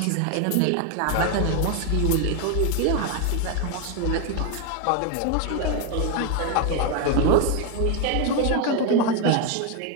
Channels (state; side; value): different; both; correlation 0.01